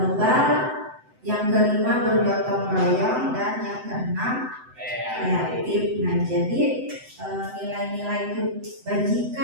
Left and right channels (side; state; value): left; late; 7.9 ms